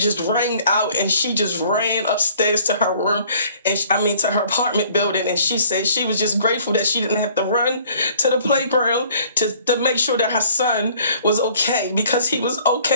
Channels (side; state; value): both; inverted; correlation -0.56